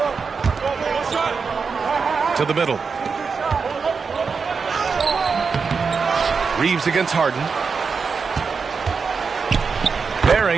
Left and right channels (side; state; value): left; quieter; 5.3 dB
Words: To the middle. Reeves against Harden.